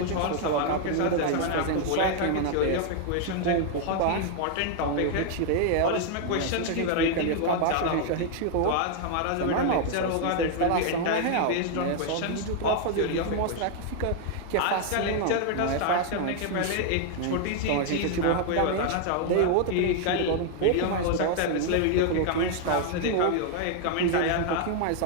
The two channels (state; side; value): different; both; correlation 0.00